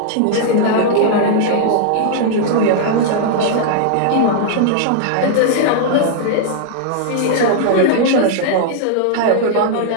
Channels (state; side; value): different; both; correlation -0.01